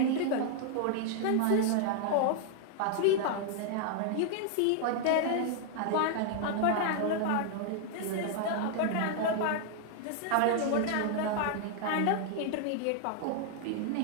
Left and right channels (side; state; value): both; different; correlation 0.00